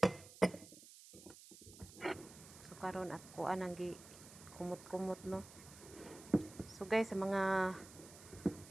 So karon at kuan ang gi kumot-kumot no. So guys, sa mga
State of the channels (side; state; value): right; noise; hiss, 18 dB below the sound